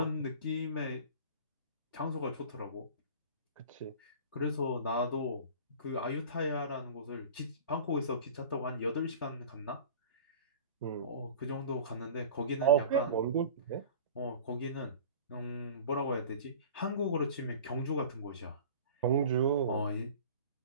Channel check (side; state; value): both; inverted; correlation -0.39